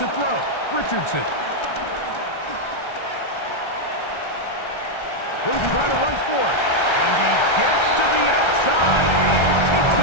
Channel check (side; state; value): right; late; 1.3 ms